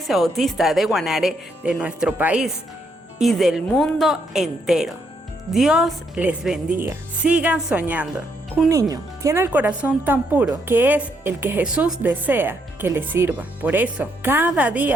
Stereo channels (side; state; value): both; normal; correlation 0.75